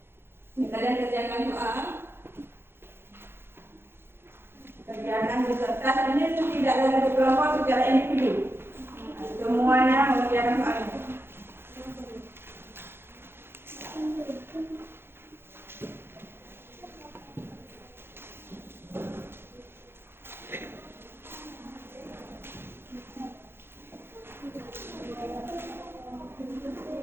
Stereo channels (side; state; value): left; late; 0.11 ms